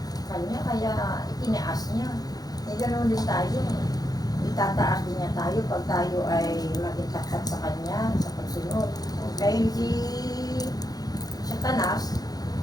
kanya, kaya itinaas niya. Eh, ganoon din tayo. Itataas din niya tayo pag tayo ay magitakat sa kanya, sa pagsunod. Kaya si Satanas,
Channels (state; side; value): late; right; 0.19 ms